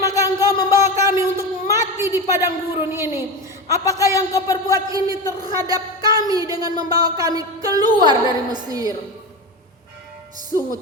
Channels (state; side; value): normal; both; correlation 0.22